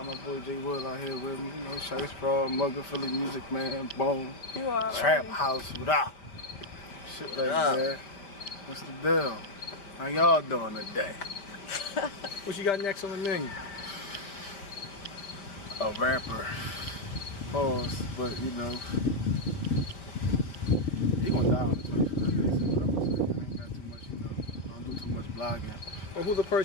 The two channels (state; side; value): late; right; 5.1 ms